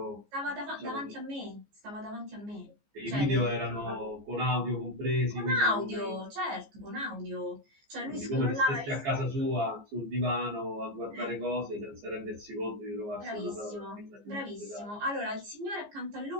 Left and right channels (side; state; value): left; late; 14 ms